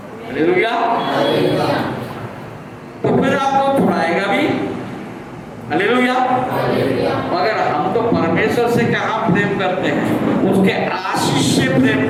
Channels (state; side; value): identical; both; correlation 1.00